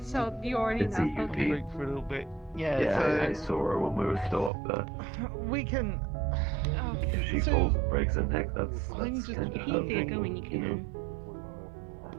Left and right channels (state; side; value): drops out; left; at 4.5 s